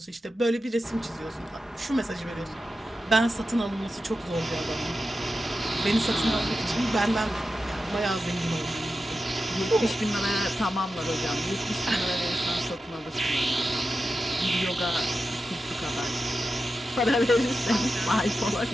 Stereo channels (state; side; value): normal; both; correlation 0.91